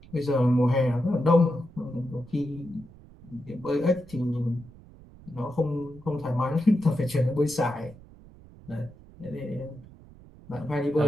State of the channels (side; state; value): right; noise; rumble, 21 dB below the sound